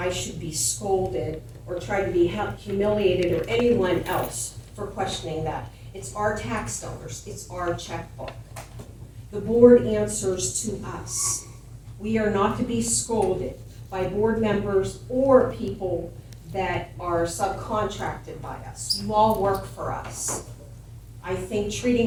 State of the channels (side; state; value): both; identical; correlation 1.00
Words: should be scolded or try to be humiliated or anyone else for questioning that. It's our tax dollars, it's our checkbook. The board answers to us. We are not to be scolded by board members or people that are subcontracted by us. You all work for us. I think